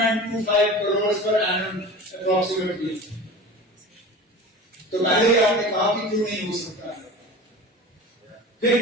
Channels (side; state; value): both; normal; correlation 0.35